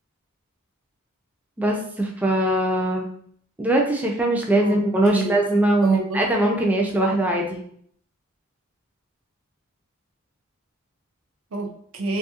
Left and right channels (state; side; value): normal; both; correlation 0.63